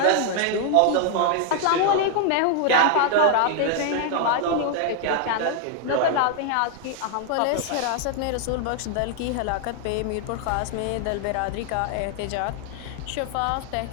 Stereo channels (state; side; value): different; both; correlation 0.00